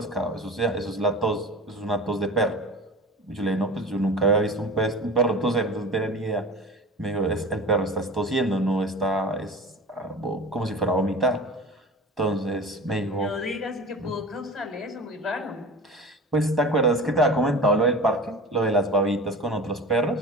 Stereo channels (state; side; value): normal; both; correlation 0.35